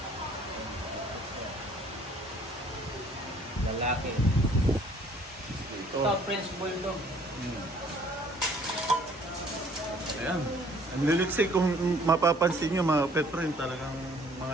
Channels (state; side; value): normal; both; correlation 0.58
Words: Lalaki. Ito. Ito, French Bulldog. Ayan. Ang liliksay kung mapapansin nyo mga pet friend, talagang